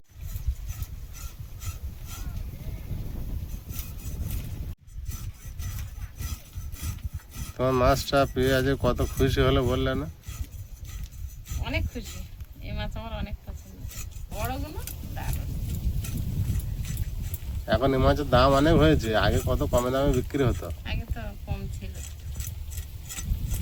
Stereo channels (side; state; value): both; identical; correlation 1.00